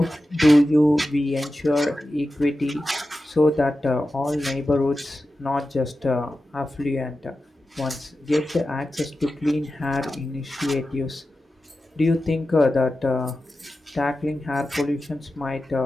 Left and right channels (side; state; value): both; normal; correlation 0.92